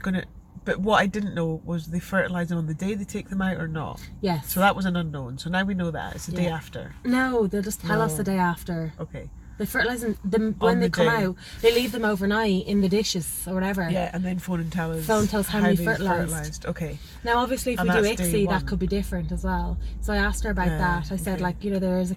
But what I didn't know was they fertilize them on the day they take them out or not. Yes. So that was an unknown. So now we know that it's the day after. No, they'll just tell us the day after. Okay. They fertilise them when they come out. They leave them overnight in the dishes or whatever. Yeah, and then phone and tell us. How many fertilised. Okay. Now, obviously, if we do ICSI, that could be different as well. So I asked her about that. I said, like, there is a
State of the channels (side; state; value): both; identical; correlation 1.00